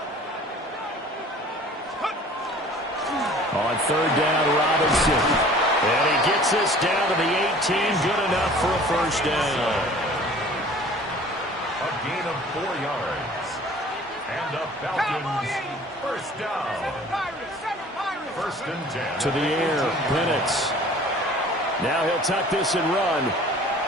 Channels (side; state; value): both; normal; correlation 0.48